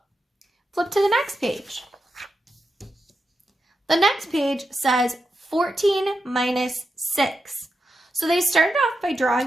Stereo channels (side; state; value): both; normal; correlation 0.88